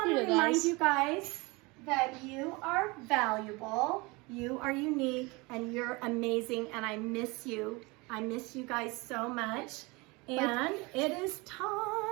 to remind you guys that you are valuable, you are unique, and you're amazing, and I miss you. I miss you guys so much. And it is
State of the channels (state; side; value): quieter; left; 25.6 dB